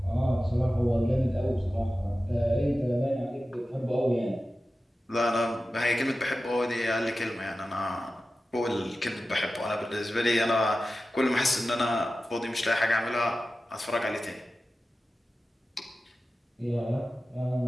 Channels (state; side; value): normal; both; correlation 0.94